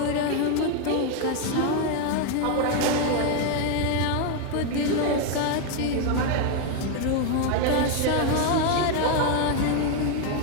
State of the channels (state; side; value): different; both; correlation 0.01